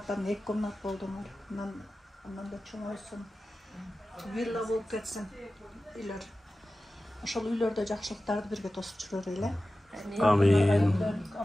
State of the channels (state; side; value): normal; both; correlation 0.95